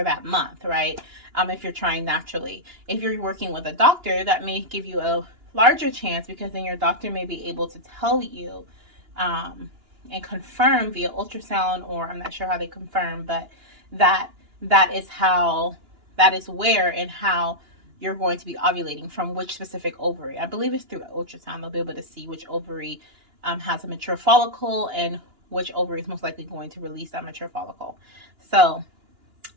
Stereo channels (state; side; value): late; left; 2.9 ms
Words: that month, right? If you're trying naturally. If you're working with a doctor, that may give you a larger chance, because then your doctor may be able to tell you and confirm via ultrasound, or I'm not sure how they confirm, but that is where and how you're going to be ovulating, from which specific ovary. I believe it's through ultrasound. They'll be able to see which ovary has a mature follicle and which ovary is most likely going to release that mature follicle. So